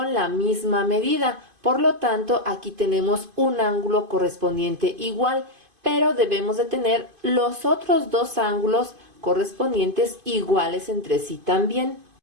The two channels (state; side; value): late; left; 2.5 ms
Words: la misma medida. Por lo tanto, aquí tenemos un ángulo correspondiente igual, pero debemos de tener los otros dos ángulos correspondientes iguales entre sí también.